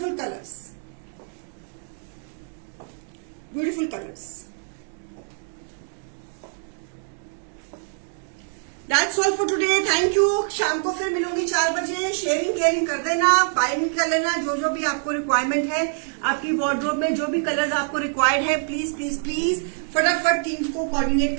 colours, beautiful colours. That's all for today, thank you. शाम को फिर मिलूंगी 4 बजे। शेयरिंग केयरिंग कर देना, बाइंग कर लेना जो भी आपको रिक्वायरमेंट है। आपकी वार्डरोब में जो भी कलर्स आपको रिक्वायर्ड है, प्लीज प्लीज प्लीज फटाफट टीम को कोऑर्डिनेट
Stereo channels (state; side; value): silent; left; 62 dB below the other